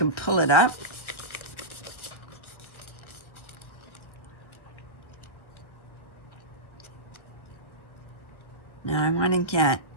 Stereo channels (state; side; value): late; right; 1.2 ms